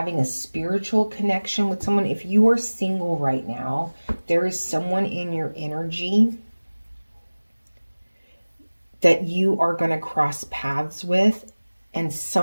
a spiritual connection with someone. If you are single right now, there is someone in your energy that you are going to cross paths with, and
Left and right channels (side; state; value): both; inverted; correlation -1.00